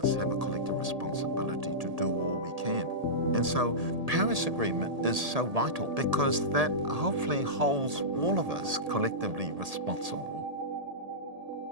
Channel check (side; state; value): left; late; 1.8 ms